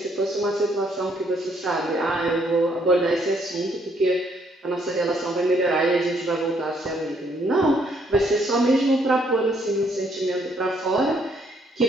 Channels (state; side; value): normal; both; correlation 0.69